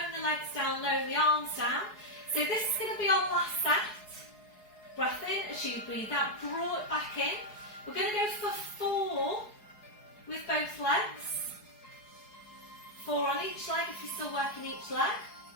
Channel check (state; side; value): late; right; 4.7 ms